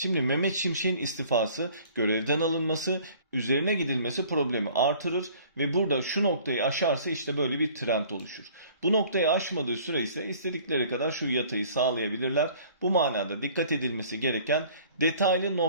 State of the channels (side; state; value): both; inverted; correlation -0.52